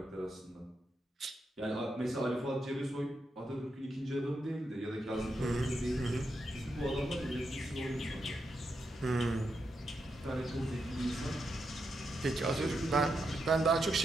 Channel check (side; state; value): both; normal; correlation 0.84